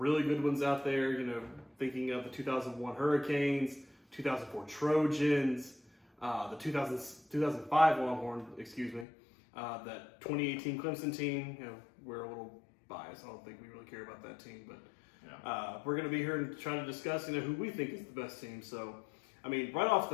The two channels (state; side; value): drops out; right; at 9.1 s